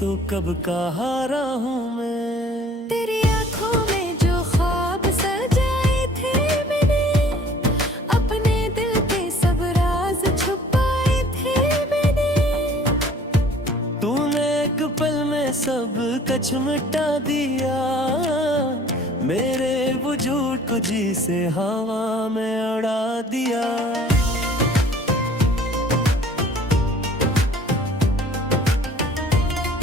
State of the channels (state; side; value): normal; both; correlation 0.52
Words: कब का हारा हूँ मैं। तेरी आंखों में जो ख्वाब सजाए थे मैंने, अपने दिल के सब राज छुपाए थे मैंने। तूने एक पल में सब कुछ मिटा दिया, मेरे वजूद को जी से हवा में उड़ा दिया।